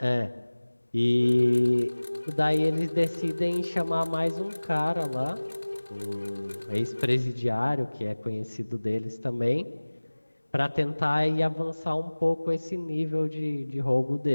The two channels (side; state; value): both; inverted; correlation -1.00